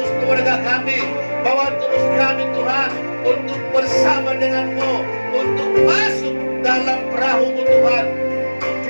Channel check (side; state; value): both; inverted; correlation -1.00